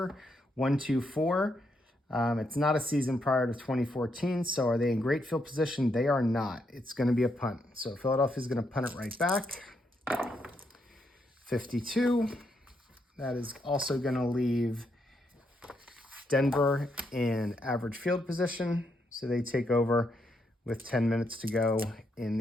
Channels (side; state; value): both; normal; correlation 0.78